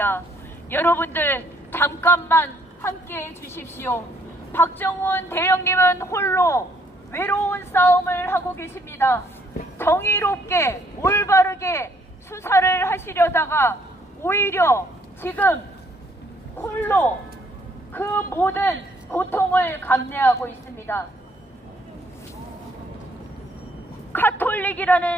여러분들 잠깐만 함께 해주십시오. 박정훈 대령님은 홀로 외로운 싸움을 하고 계십니다. 정의롭게 올바르게 수사를 하시려다가 오히려 지금 홀로 그 모든 고통을 감내하고 있습니다.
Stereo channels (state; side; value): normal; both; correlation 0.66